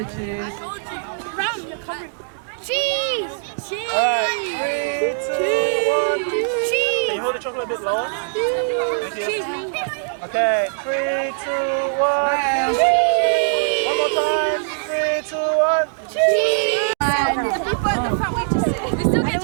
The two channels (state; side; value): silent; left; digital silence